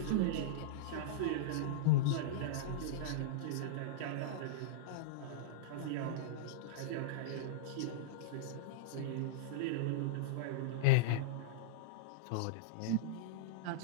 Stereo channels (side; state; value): both; different; correlation -0.03